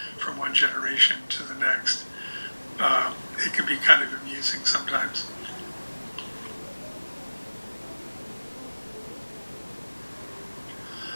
from one generation to the next. It can be kind of amusing sometimes.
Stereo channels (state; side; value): inverted; both; correlation -1.00